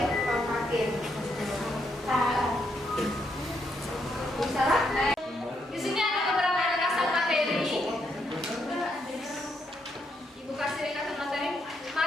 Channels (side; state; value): both; normal; correlation 0.77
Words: tampakin. Bisa lah. Di sini ada beberapa ringkasan materi. Ibu kasih ringkasan materi.